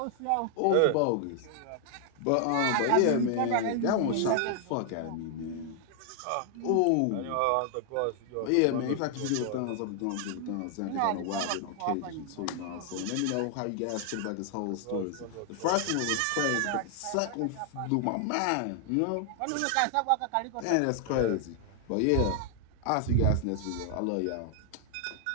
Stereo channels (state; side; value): different; both; correlation 0.00